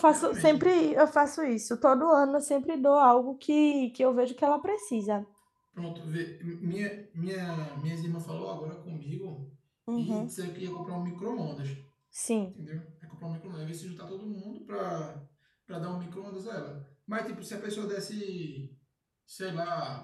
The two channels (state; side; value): identical; both; correlation 1.00